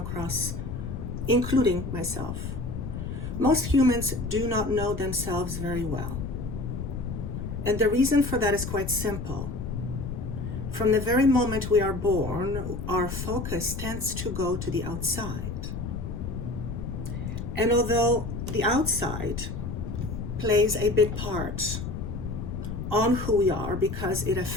including myself, most humans do not know themselves very well. And the reason for that is quite simple. From the very moment we are born, our focus tends to go to the outside. And although the outside plays a big part on who we are because it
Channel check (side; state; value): left; noise; rumble, 5 dB below the sound